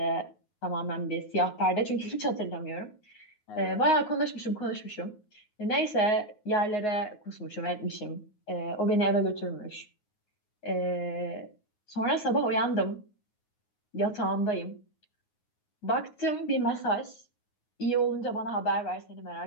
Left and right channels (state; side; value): late; right; 9.5 ms